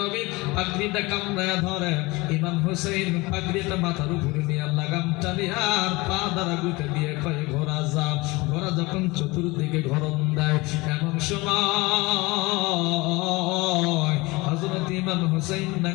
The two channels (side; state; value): right; quieter; 23.2 dB